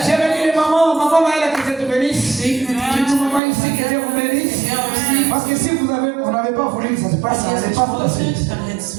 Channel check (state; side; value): drops out; left; at 3.4 s